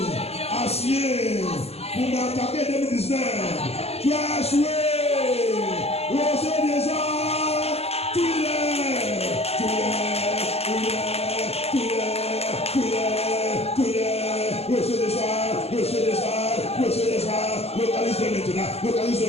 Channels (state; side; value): late; right; 0.30 ms